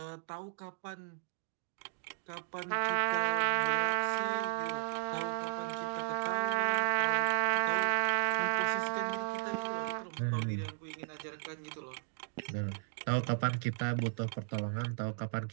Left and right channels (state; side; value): silent; left; digital silence